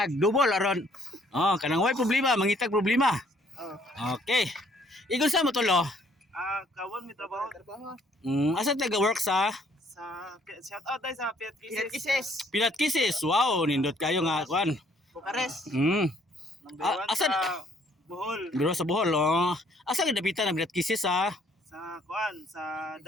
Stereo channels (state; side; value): normal; both; correlation 0.64